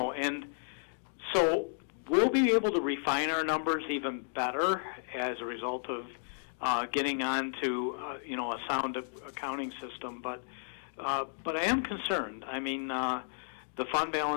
and so we'll be able to refine our numbers even better as a result of getting on to you know, a sound accounting system. But I am concerned. I mean, the fund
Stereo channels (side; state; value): right; silent; digital silence